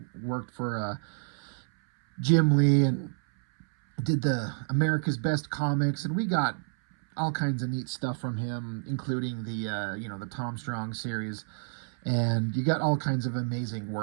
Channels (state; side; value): silent; left; 58 dB below the other